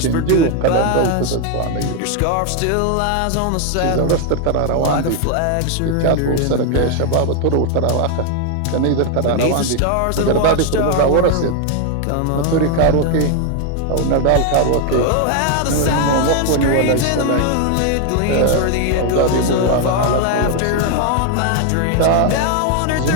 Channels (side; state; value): both; different; correlation 0.01